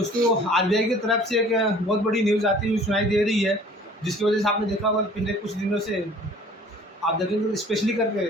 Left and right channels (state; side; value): normal; both; correlation 0.51